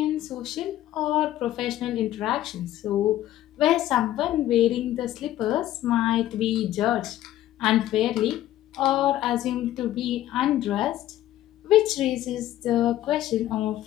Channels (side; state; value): right; quieter; 13.6 dB